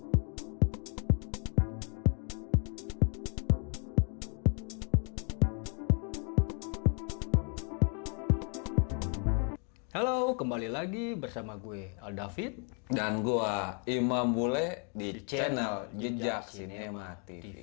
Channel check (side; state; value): right; quieter; 39.8 dB